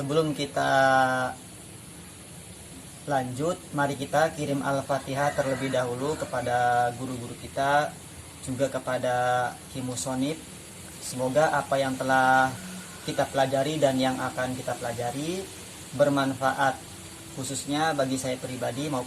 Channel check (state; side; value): identical; both; correlation 1.00